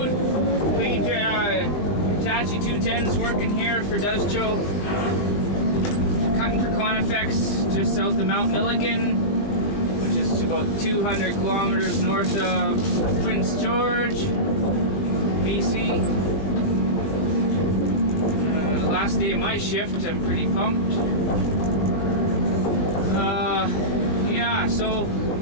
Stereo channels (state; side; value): late; right; 20 ms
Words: Hitachi 210s working here for Duzcho. Cutting for Conifex just south of Mount Milligan, which is about 200 kilometers north of Prince George, BC. Last day of my shift, I'm pretty pumped. Yeah, so